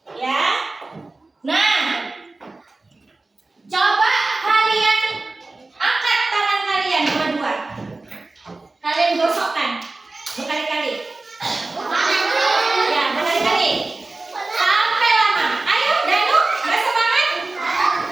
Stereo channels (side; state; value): left; quieter; 3.3 dB